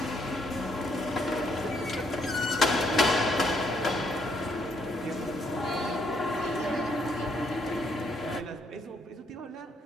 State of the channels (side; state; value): both; normal; correlation 0.71